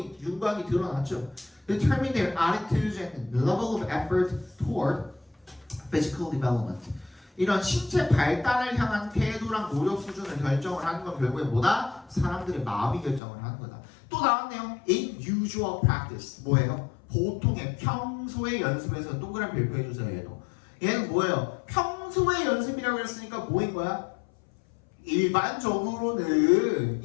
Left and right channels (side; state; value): right; drops out; at 13.2 s